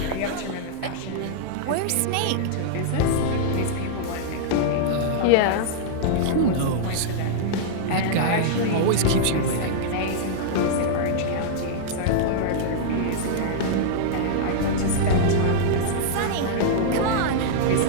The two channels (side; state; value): both; different; correlation -0.02